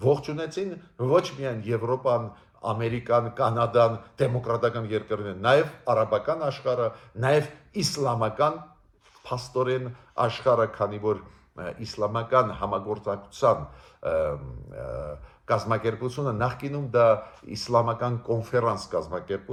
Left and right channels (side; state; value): both; identical; correlation 1.00